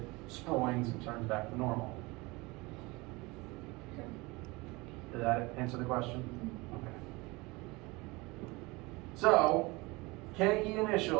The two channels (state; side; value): quieter; left; 23.9 dB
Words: springs and turns back to normal. Okay. Did that answer the question? Okay. So, KE